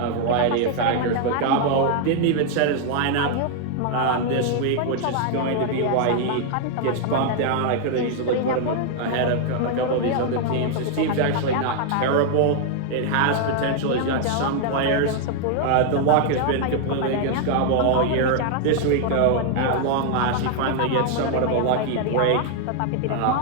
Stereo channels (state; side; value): different; both; correlation 0.00